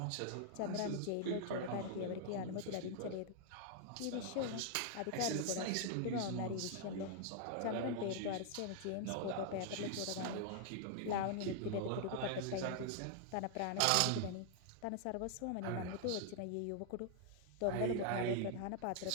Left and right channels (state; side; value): different; both; correlation 0.00